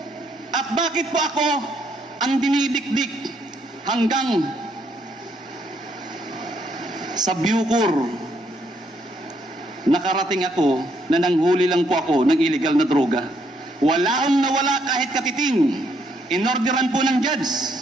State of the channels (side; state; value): both; normal; correlation 0.72